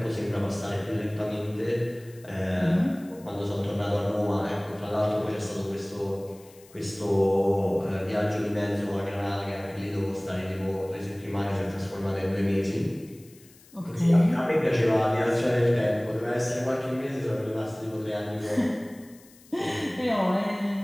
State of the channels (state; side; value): noise; left; hiss, 25 dB below the sound